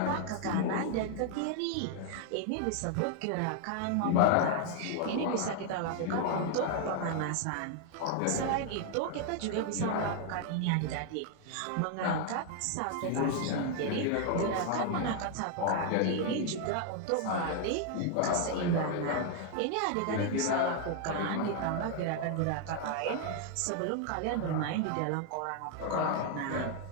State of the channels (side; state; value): both; different; correlation 0.00